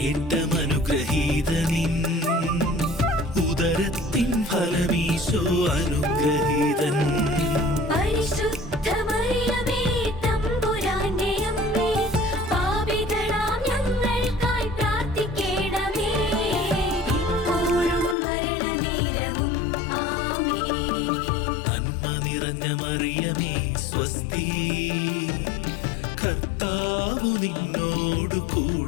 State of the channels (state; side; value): drops out; right; at 18.2 s